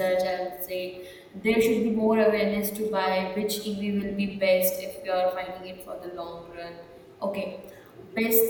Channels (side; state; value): both; identical; correlation 1.00